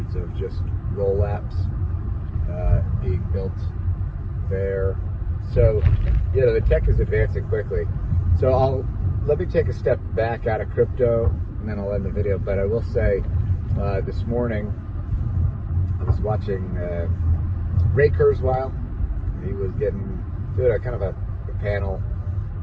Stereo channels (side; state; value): both; identical; correlation 1.00